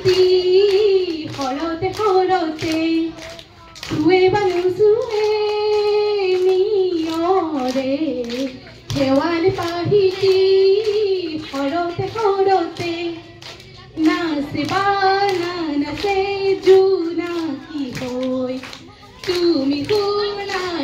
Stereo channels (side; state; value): both; identical; correlation 1.00